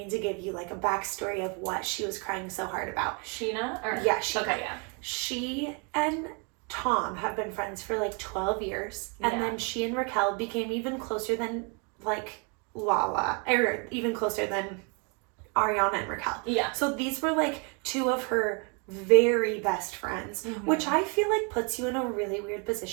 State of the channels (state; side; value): quieter; left; 35.1 dB